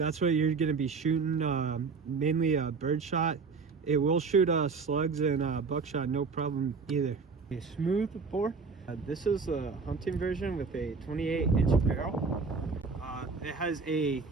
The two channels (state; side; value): quieter; left; 4.8 dB